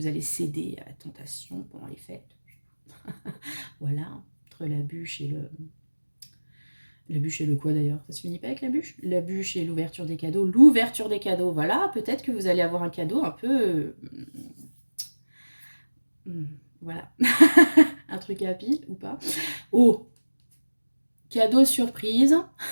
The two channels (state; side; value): inverted; both; correlation -1.00